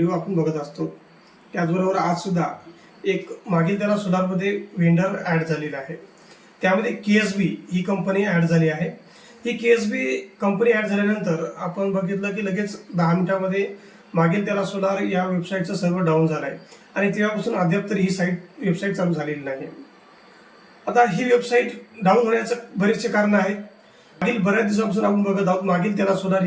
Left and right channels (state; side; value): identical; both; correlation 1.00